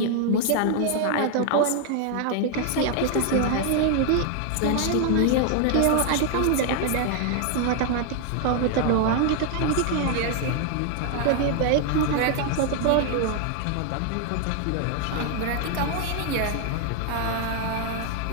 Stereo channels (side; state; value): both; different; correlation 0.00